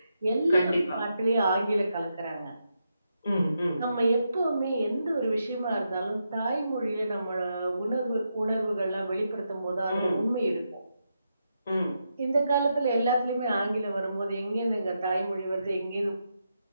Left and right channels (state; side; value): inverted; both; correlation -0.84